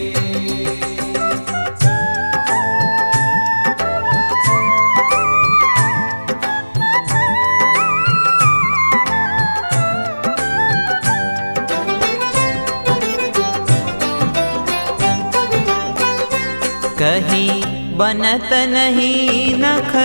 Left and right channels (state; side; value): inverted; both; correlation -1.00